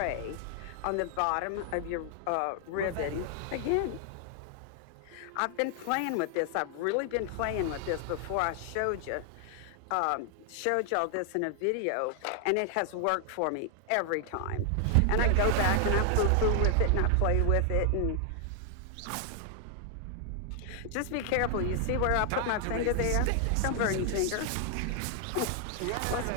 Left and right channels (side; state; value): both; different; correlation 0.00